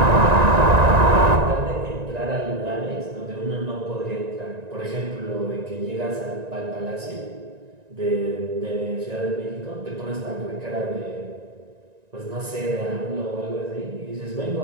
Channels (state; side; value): late; left; 1.9 ms